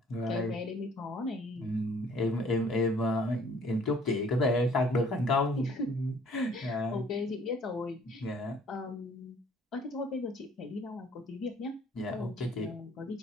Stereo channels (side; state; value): both; normal; correlation 0.57